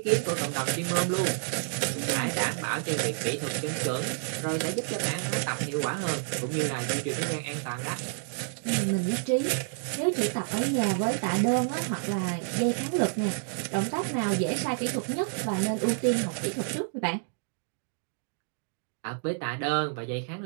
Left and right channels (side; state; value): left; silent; digital silence